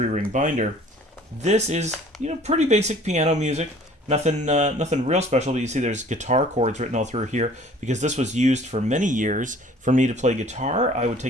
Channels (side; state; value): both; normal; correlation 0.51